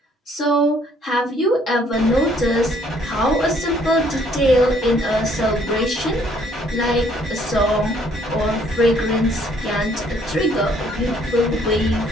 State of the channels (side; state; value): both; normal; correlation 0.63